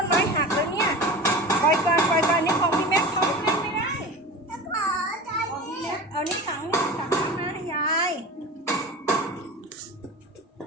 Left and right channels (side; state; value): both; normal; correlation 0.32